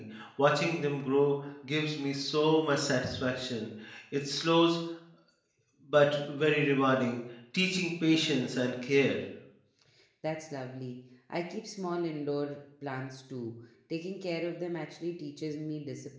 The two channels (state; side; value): identical; both; correlation 1.00